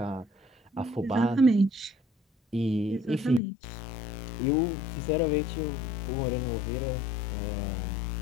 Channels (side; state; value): right; drops out; at 3.4 s